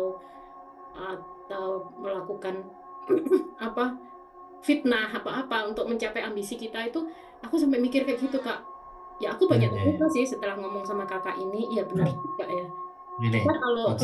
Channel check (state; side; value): identical; both; correlation 1.00